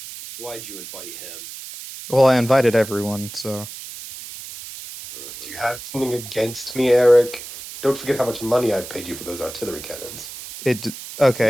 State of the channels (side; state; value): right; noise; hiss, 12 dB below the sound